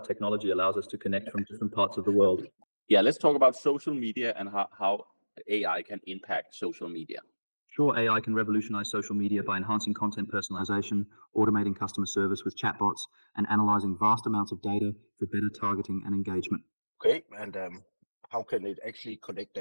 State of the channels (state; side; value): inverted; both; correlation -1.00